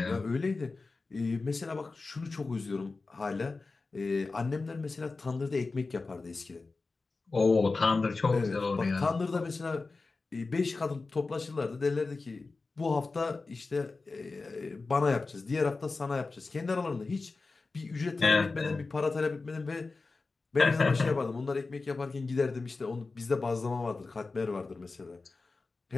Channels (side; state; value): right; quieter; 3.8 dB